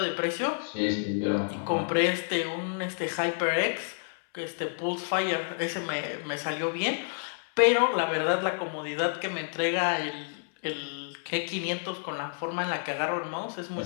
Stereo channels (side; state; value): right; silent; 58 dB below the other